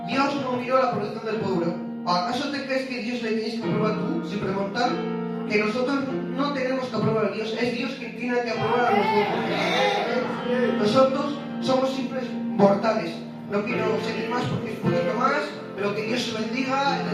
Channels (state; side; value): identical; both; correlation 1.00